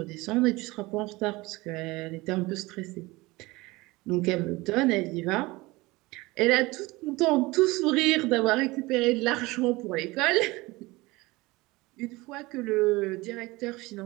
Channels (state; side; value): quieter; left; 21.8 dB